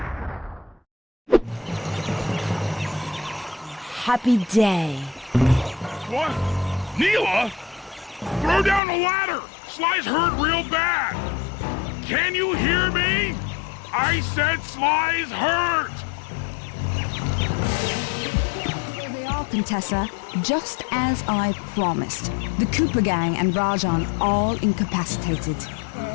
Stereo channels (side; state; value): right; drops out; at 8.8 s